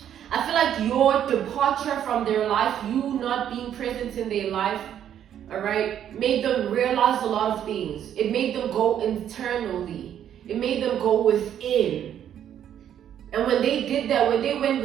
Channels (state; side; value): quieter; left; 10.0 dB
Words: I feel like your departure from their life, you not being present in their life, all right, made them realize a lot of things. It made them go internally. It made them go within. And when they did that, when they went